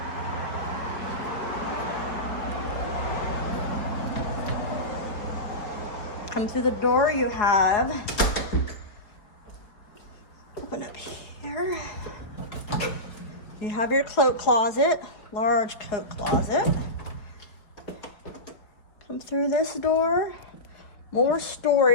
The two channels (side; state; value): right; late; 4.8 ms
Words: Come through the door, you have, open up here, you have your coat closet, large coat closet. Come through this door, more